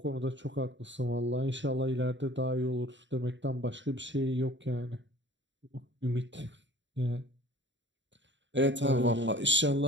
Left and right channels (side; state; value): left; late; 0.54 ms